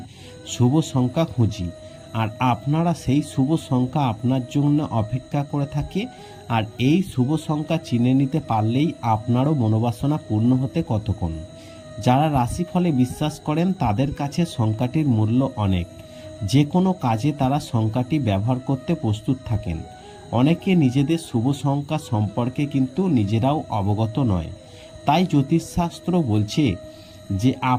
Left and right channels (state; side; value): identical; both; correlation 1.00